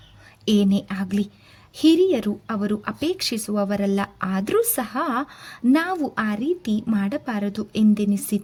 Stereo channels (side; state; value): both; identical; correlation 1.00